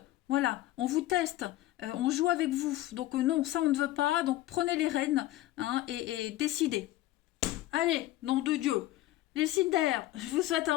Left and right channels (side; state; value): right; quieter; 15.6 dB